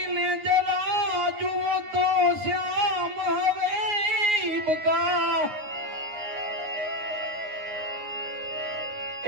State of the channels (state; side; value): late; left; 9.6 ms